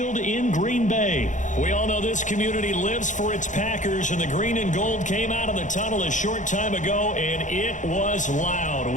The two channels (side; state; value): right; late; 0.36 ms